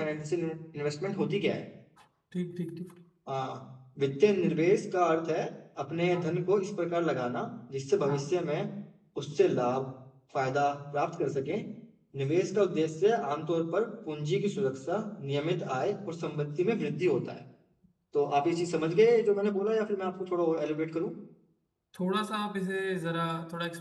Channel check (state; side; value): identical; both; correlation 1.00